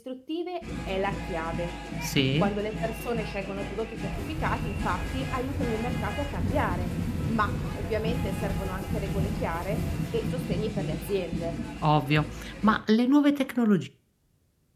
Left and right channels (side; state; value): both; identical; correlation 1.00